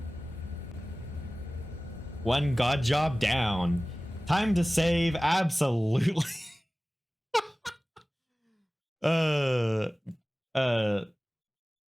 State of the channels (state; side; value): normal; both; correlation 0.97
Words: One god job down. Time to save, absolutely. uh